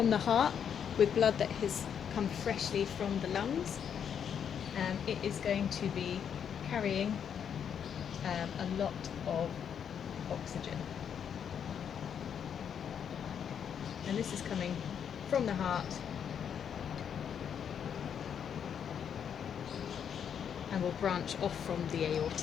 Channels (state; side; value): quieter; right; 8.0 dB